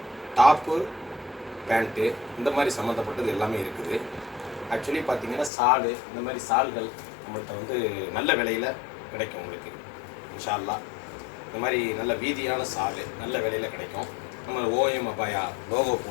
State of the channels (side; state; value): right; drops out; at 5.5 s